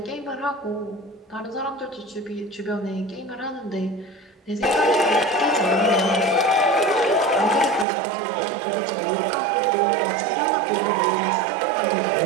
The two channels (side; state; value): left; drops out; at 7.9 s